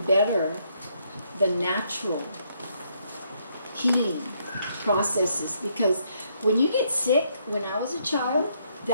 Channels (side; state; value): both; inverted; correlation -0.72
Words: better the natural healing processes? Because when you get sick, when I was a child,